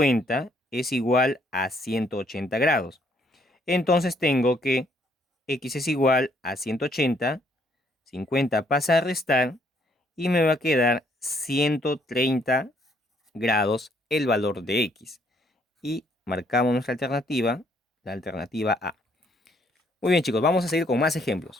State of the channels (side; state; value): both; normal; correlation 0.68